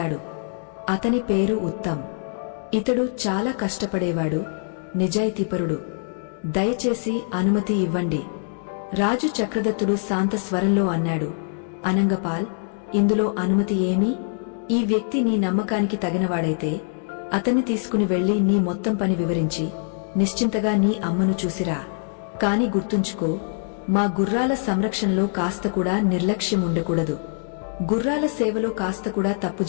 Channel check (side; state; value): right; silent; digital silence